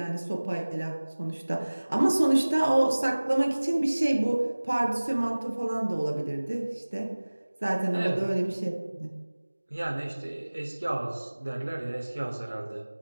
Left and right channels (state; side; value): inverted; both; correlation -1.00